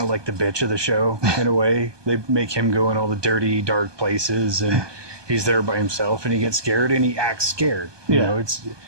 like the bitch of the show in a way. They make him go in all the dirty, dark places, and he's there by himself, and he gets scared, and he acts scared. You know,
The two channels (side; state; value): left; late; 1.2 ms